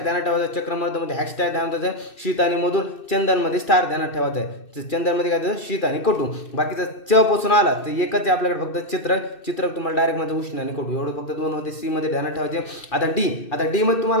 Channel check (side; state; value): right; late; 2.6 ms